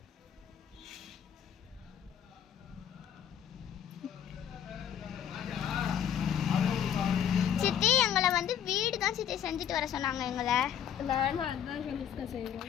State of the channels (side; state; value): right; quieter; 9.1 dB